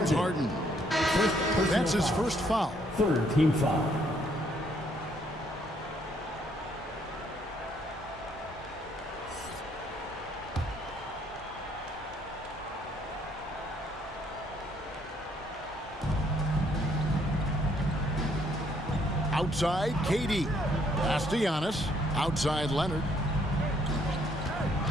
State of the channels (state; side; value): normal; both; correlation 0.68